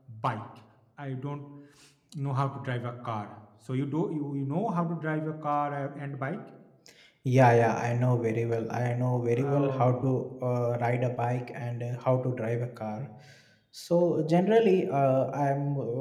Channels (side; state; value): both; identical; correlation 1.00